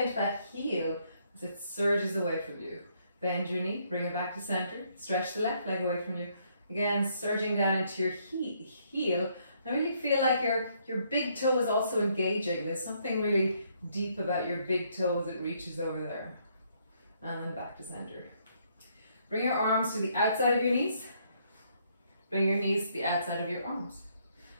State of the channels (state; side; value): inverted; both; correlation -0.70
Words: into that heel as it surges away from you. Bend your knee, bring it back to center. Stretch the left leg away from you. Again, surging down into your heel. I really feel like your big toe is also engaging. There's something really deep about your big toe as it reaches over there. And then back to center. Bring your arms to the outside of your knees. Bring your knees to the outside of your arms.